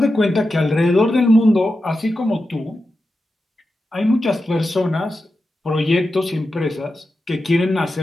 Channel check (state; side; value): normal; both; correlation 0.90